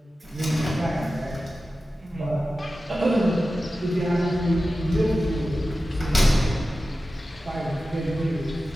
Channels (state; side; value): normal; both; correlation 0.94